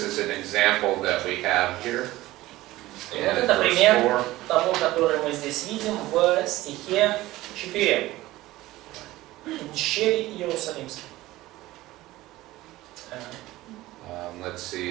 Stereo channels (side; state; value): left; quieter; 17.3 dB